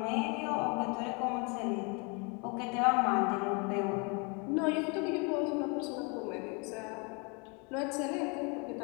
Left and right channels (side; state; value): right; quieter; 32.4 dB